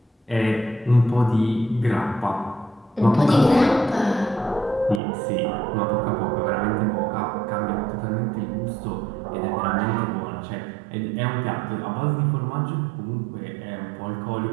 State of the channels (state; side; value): drops out; left; at 5.0 s